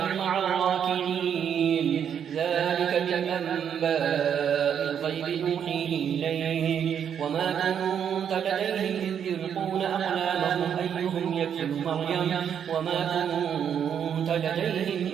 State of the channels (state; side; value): quieter; left; 8.3 dB